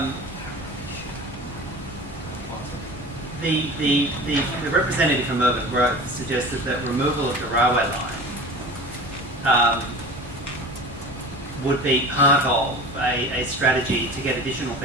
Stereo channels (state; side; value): normal; both; correlation 0.36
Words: The representative from Urban Growth suggested that removal of the railway line would be part of a strategy to get additional